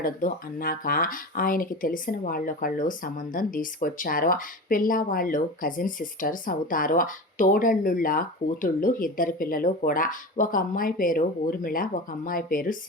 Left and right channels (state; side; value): normal; both; correlation 0.29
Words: అన్నాక ఆయనకి తెలిసిన వాళ్ళొకళ్ళు సంబంధం తీసుకొచ్చారు. పిల్ల వాళ్ళు కజిన్ సిస్టర్స్ అవుతారు. తోడళ్ళుళ్ళ కూతుళ్ళు 2 పిల్లలు కూడా. ఒక అమ్మాయి పేరు ఊర్మిళ, ఒక అమ్మాయి పేరు